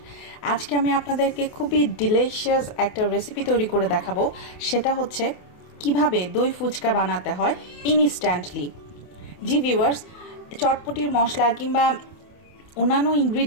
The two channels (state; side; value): late; right; 28 ms